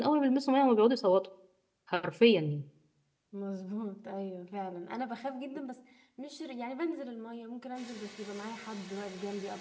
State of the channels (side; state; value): both; identical; correlation 1.00